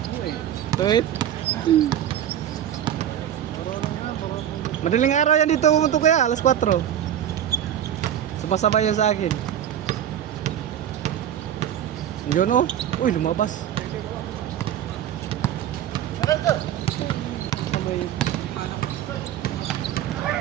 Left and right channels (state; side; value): quieter; left; 10.5 dB